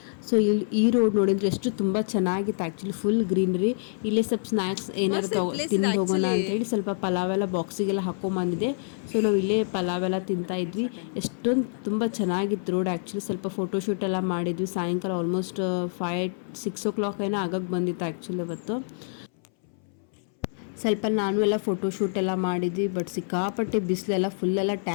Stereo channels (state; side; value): silent; right; 60 dB below the other